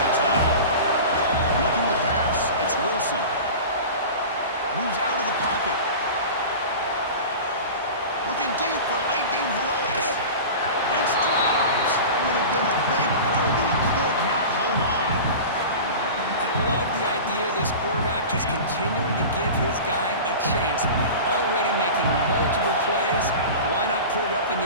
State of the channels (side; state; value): both; inverted; correlation -0.33